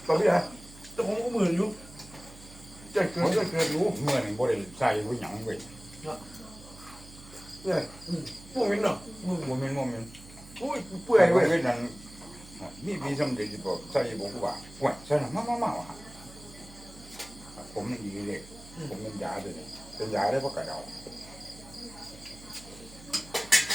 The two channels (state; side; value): noise; right; hum, 19 dB below the sound